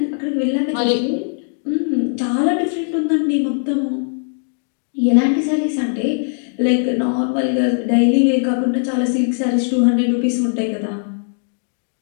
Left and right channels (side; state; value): right; silent; 59 dB below the other